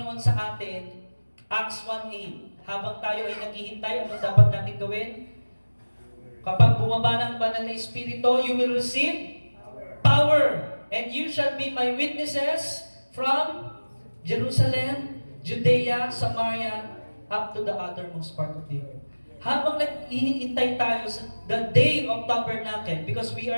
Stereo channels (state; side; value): inverted; both; correlation -1.00